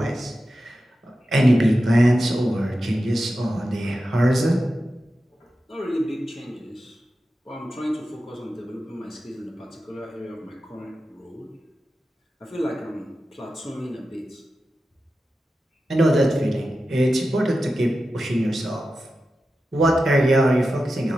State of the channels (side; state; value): both; normal; correlation 0.92